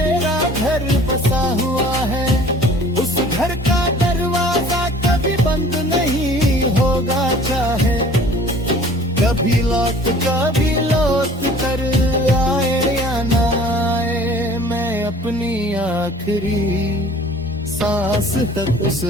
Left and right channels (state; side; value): normal; both; correlation 0.49